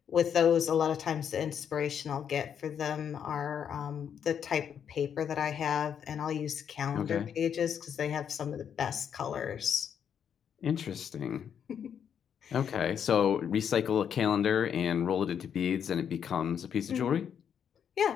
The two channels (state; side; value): quieter; right; 8.1 dB